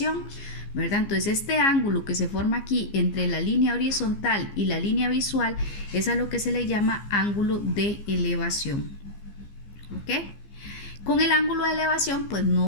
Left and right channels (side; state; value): right; late; 15 ms